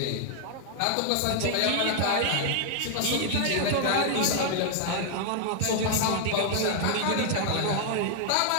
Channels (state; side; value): different; both; correlation -0.01